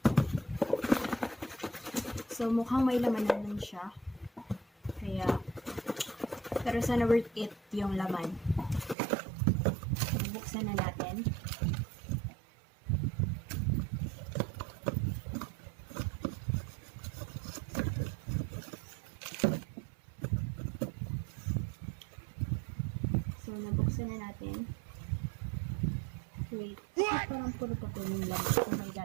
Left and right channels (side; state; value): left; drops out; at 9.0 s